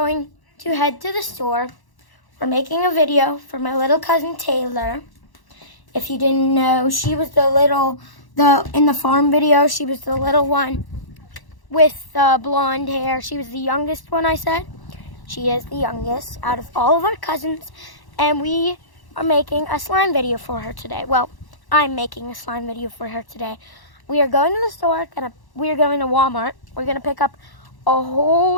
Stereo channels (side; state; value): right; late; 1.1 ms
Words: to head to the store. We're making a video for my little cousin Taylor. If you didn't know, she was in the farm video, she was the little one with blonde hair. She was the youngest one, I said. She is the youngest out of all of our cousins. And we are making a slime video for her today. Well, I'm making a slime video for her today. We are going to the store. We are going to Walmart. We're going to pick up a